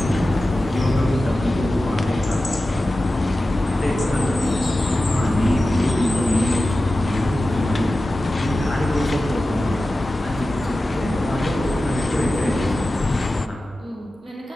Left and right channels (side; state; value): both; normal; correlation 0.94